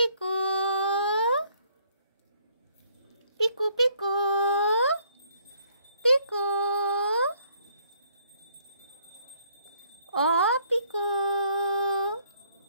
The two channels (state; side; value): inverted; both; correlation -0.65